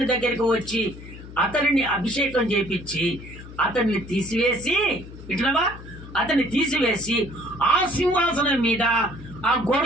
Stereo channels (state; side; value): noise; left; hum, 15 dB below the sound